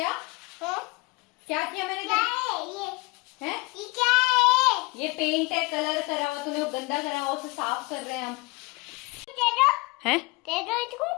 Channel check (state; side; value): quieter; right; 25.5 dB